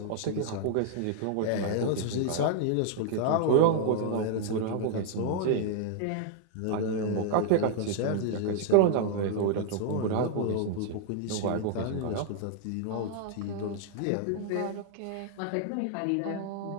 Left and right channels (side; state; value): both; different; correlation -0.01